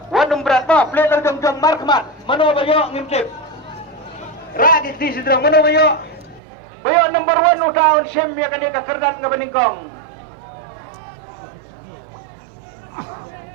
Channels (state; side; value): drops out; left; at 6.4 s